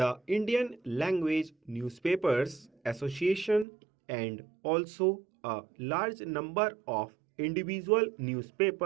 Indian Language Newspapers Association, and also a large number of individual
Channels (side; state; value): left; drops out; at 3.7 s